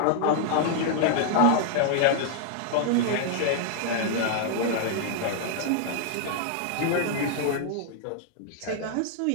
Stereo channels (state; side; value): different; both; correlation 0.00